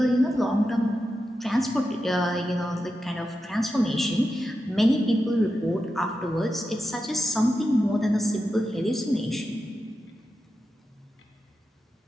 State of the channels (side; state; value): both; normal; correlation 0.89